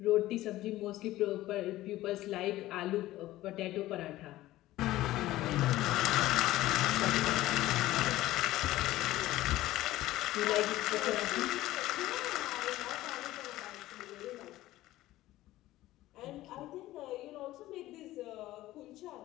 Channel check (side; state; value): right; quieter; 16.0 dB